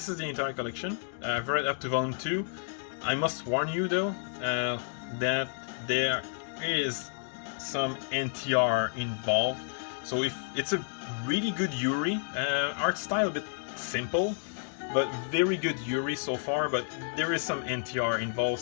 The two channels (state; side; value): silent; right; digital silence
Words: is the entire collection. I've read up to volume 2. I must warn you though that there is some NTR involved. So if it's a really good Yuri, art style a bit simple, but very good Yuri so far. But there is some NTR involved.